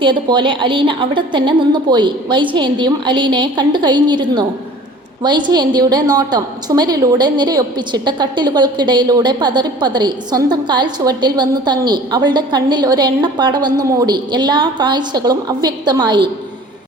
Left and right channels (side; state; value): both; normal; correlation 0.46